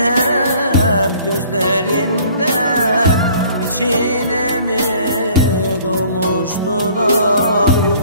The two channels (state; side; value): inverted; both; correlation -0.54